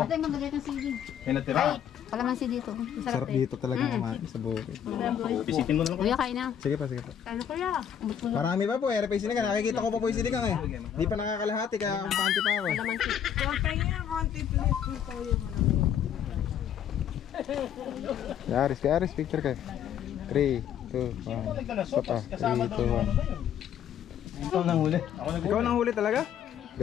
Ito yung magagay ng CD. May natira. Kalamansi dito. Sarap dito talaga kumain sa bukid. Bisitin mo na lang. Kuya, kain na. Sige pa, sige pa. Kain na kuya. Marami pa po, RP Sinigang. Nakikita ko pa po yung sinigang eh. Di pa nakakalahati kaya kumpante pa ako. Kaya Aris, picture kayo. 3, 2, 1. Sopa. 3, 2, 1. Ito nang huli. Ikaw nang huli talaga?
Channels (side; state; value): right; quieter; 9.1 dB